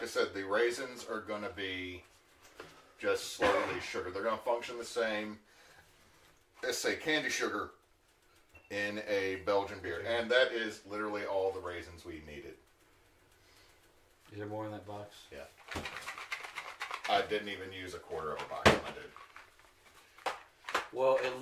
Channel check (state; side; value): identical; both; correlation 1.00